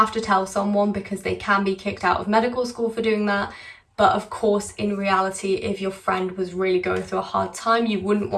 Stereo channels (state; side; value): identical; both; correlation 1.00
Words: to tell someone because they can be kicked out of medical school for doing that. But of course, in reality, if your friend was really going through a hard time, you wouldn't